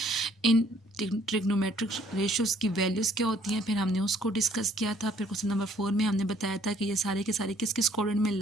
इन ट्रिग्नोमेट्रिक रेशियोज़ की वैल्यूज़ क्या होती हैं, फिर हमने उसको डिस्कस किया था। फिर क्वेश्चन नंबर 4 में हमने बताया था कि ये सारे के सारे किस किस क्वाड्रेंट में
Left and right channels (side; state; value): both; normal; correlation 0.61